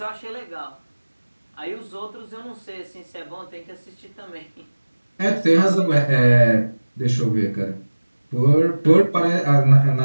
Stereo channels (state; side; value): inverted; both; correlation -1.00